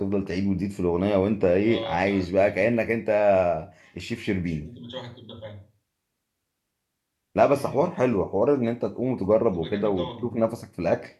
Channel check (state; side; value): identical; both; correlation 1.00